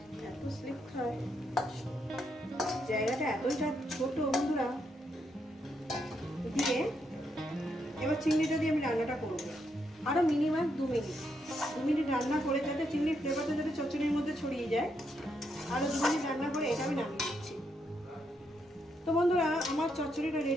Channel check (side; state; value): both; normal; correlation 0.78